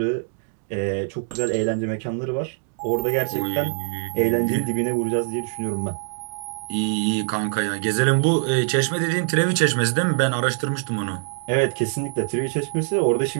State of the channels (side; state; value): left; silent; digital silence